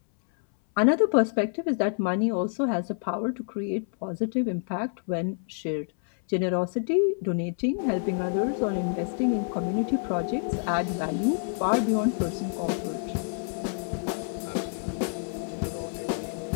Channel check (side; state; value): right; silent; 60 dB below the other